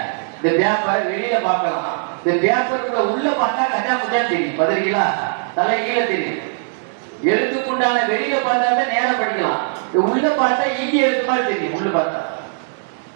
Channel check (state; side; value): silent; left; digital silence